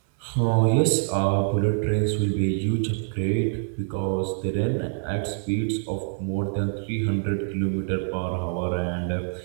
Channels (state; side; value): silent; left; digital silence